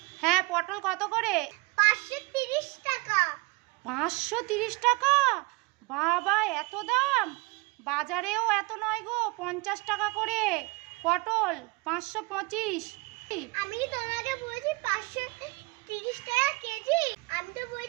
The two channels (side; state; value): left; quieter; 25.5 dB